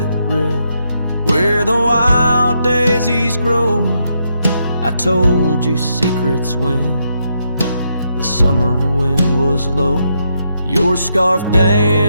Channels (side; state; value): both; inverted; correlation -0.79